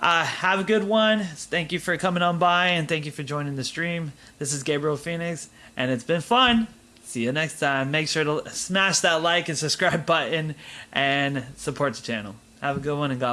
a good one. Thank you for coming on by, and thank you for joining the stream. This is Gabriel Phoenix, and it's been fun. See you next time. Make sure to smash that like and subscribe button and support the channel. Have a good one, and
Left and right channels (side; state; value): both; identical; correlation 1.00